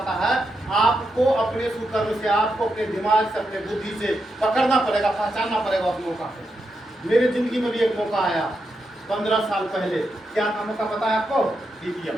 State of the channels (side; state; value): both; normal; correlation 0.85